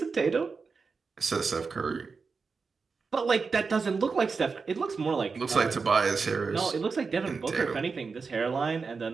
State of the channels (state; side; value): quieter; left; 4.8 dB